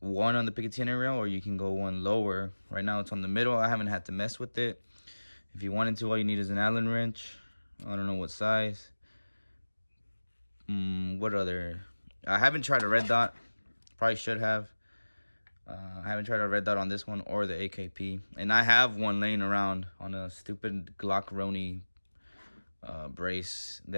on the Picatinny rail, or you can go 1 lower. Right now it's on the middle. I haven't had to mess with it. If you wanted to, all you need is an Allen wrench. I don't know what size. What other? I haven't tried a red dot. Probably should have. I haven't tried a red dot on this one or the AKP. And I have one laying around on a stupid Glock Roni brace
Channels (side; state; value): both; inverted; correlation -1.00